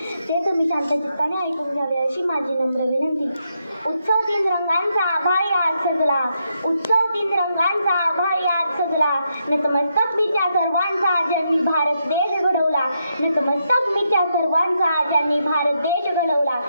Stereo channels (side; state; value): both; inverted; correlation -0.81